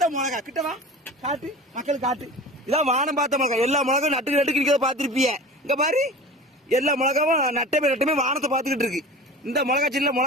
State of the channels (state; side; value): normal; both; correlation 0.36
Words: மிளகா. கிட்ட வா, காட்டு மக்களுக்கு காட்டு. இதான் வானம் பார்த்த மிளகா. எல்லா மிளகாவும் நட்டுக்கு நட்டுக்கு இருக்கிறத பார்த்துருப்பீங்க. இங்க பாரு, எல்லா மிளகாவும் நட்டமே வானத்தை பார்த்துக்கிட்டு இருக்கு. இந்த மிளகா செடியில